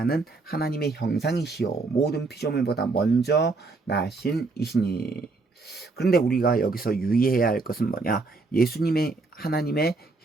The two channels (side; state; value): left; quieter; 3.7 dB